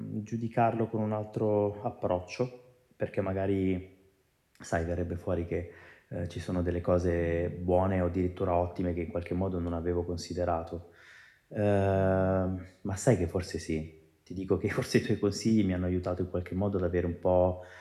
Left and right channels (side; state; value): both; identical; correlation 1.00